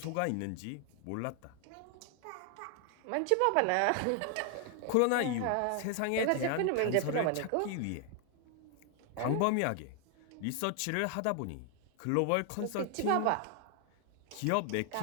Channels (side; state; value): both; different; correlation 0.00